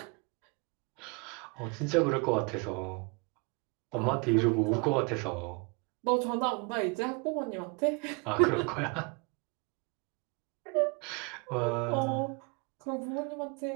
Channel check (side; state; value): left; quieter; 32.0 dB